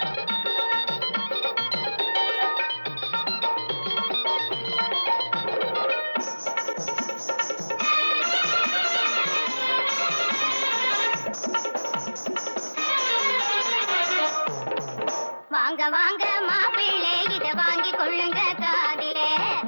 வாங்க வாங்க மாப்பிள்ளை இத வாங்கி கொள்ளுங்க காதிலே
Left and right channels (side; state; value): both; inverted; correlation -1.00